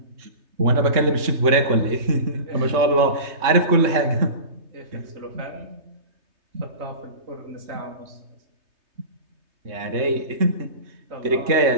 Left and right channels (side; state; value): left; late; 3.3 ms